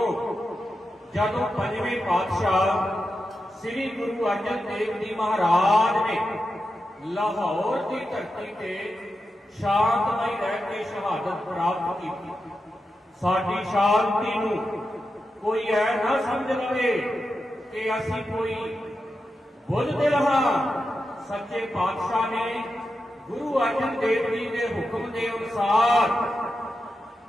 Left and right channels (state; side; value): normal; both; correlation 0.89